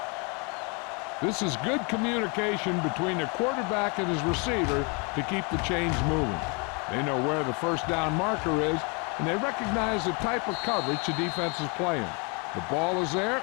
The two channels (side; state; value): right; quieter; 32.9 dB